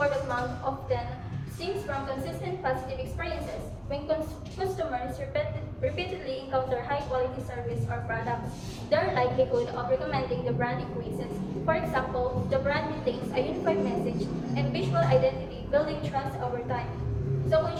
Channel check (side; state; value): both; identical; correlation 1.00